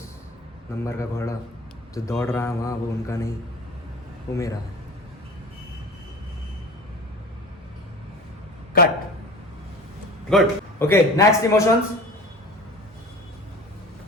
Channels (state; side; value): normal; both; correlation 0.38